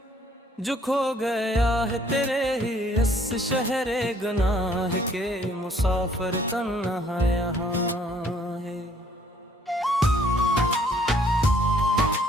जो खो गया है तेरे ही इस शहरे गुनाह के, मुसाफिर तन्हा यहाँ है।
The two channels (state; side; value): normal; both; correlation 0.62